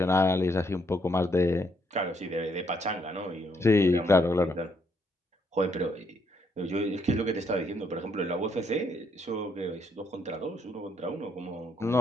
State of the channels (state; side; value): normal; both; correlation 0.73